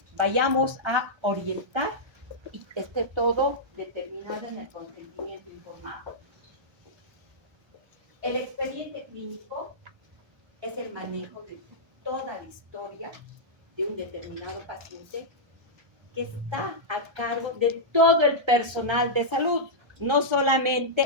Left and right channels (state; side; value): late; left; 1.3 ms